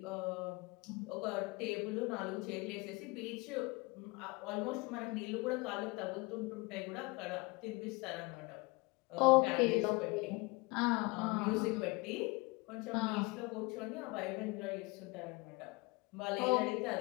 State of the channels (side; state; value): right; quieter; 25.9 dB